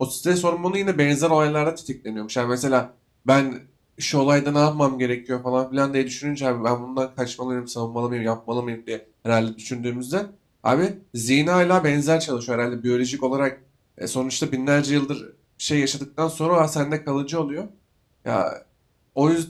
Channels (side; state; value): both; identical; correlation 1.00